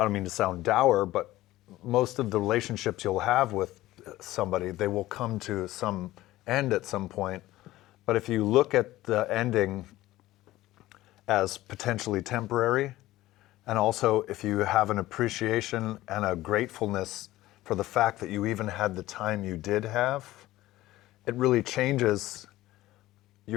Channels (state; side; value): quieter; right; 16.4 dB